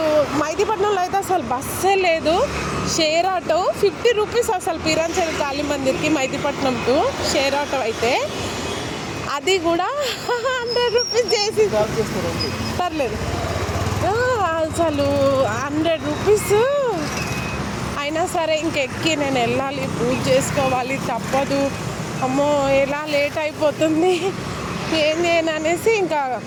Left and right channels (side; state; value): both; identical; correlation 1.00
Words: మైదీపట్నంలో అయితే అసలు బస్సే లేదు. షేర్ ఆటో 50 రూపీస్ అసలు పీరాంచేరి కాళీ మందిర్కి మైదీపట్నం టు షేర్ ఆటో అయితే, అది కూడా 100 రూపీస్ చేసి పర్లేదు. అసలు 100 రూపీస్ అయినా సరే ఇంకెక్కి నేను వెళ్ళాలి, పూజ చేసుకోవాలి, తప్పదు. అమ్మో ఎలా లేట్ అయిపోతుంది, ఏం చేయను అనేసి ఇంకా